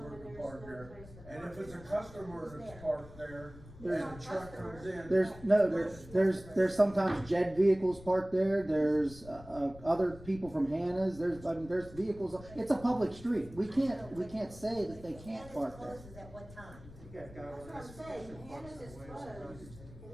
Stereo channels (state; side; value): noise; left; rumble, 18 dB below the sound